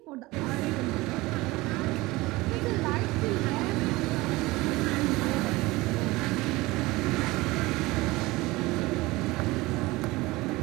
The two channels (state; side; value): quieter; left; 20.8 dB